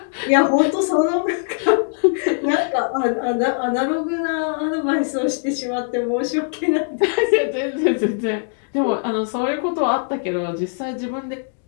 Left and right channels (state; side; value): silent; right; digital silence